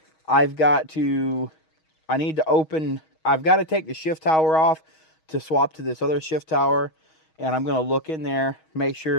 I've got to, I need to open, I've got to take the shift tower off to swap to this other shift tower. And I'm going to look in there, make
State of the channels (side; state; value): right; late; 6.3 ms